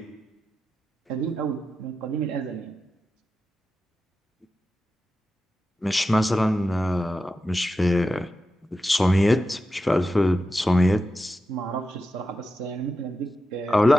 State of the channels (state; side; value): normal; both; correlation 0.91